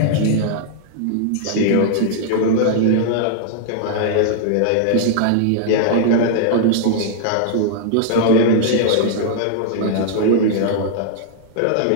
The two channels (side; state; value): both; different; correlation -0.01